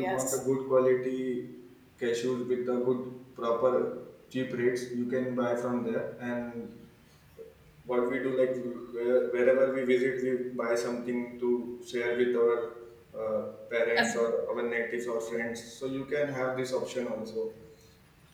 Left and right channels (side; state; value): both; identical; correlation 1.00